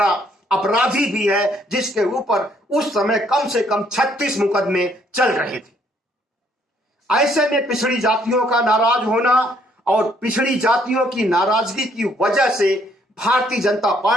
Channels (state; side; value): normal; both; correlation 0.67